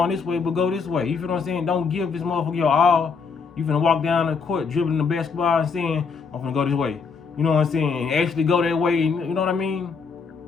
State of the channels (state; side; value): quieter; right; 5.3 dB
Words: this way, but go this way. You feel what I'm saying? Don't give this motherfucker your all. You finna walk down the court dribbling the basketball and saying, I'm finna go this way. You know what I'm saying? And actually go that way, you know what I mean?